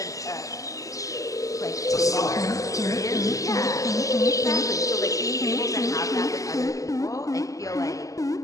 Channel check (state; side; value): late; right; 0.16 ms